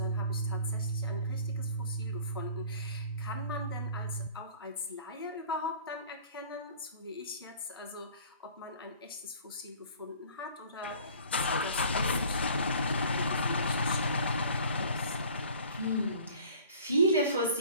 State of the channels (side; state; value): both; inverted; correlation -0.48